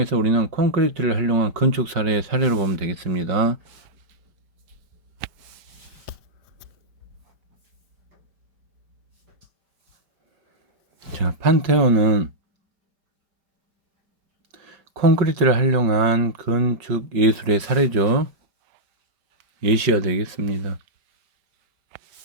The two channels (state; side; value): late; left; 5.1 ms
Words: 우리는 콘크리트를 활용한 건축 사례의 사례로 보면 되겠습니다. 자, 판테온은 콘크리트를 활용한 건축 예술의 사례죠. 예시가 되겠습니다.